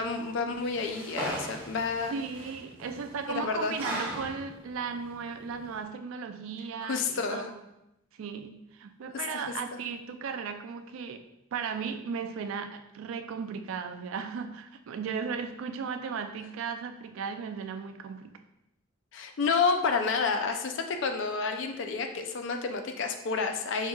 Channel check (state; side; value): normal; both; correlation -0.03